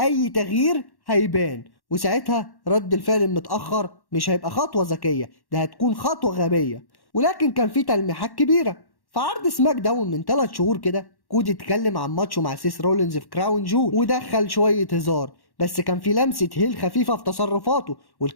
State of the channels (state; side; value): late; right; 1.1 ms